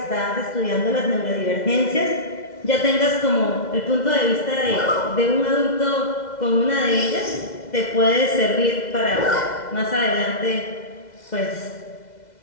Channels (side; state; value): right; late; 2.0 ms